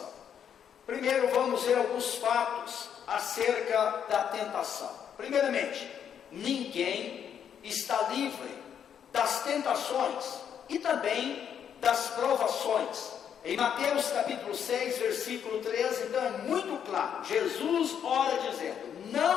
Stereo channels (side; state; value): right; quieter; 8.5 dB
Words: Primeiro vamos ver alguns fatos acerca da tentação. Primeiramente, ninguém está livre das tentações e também das provações. Em Mateus capítulo 6, versículo 13, então é muito claro. Jesus ora dizendo: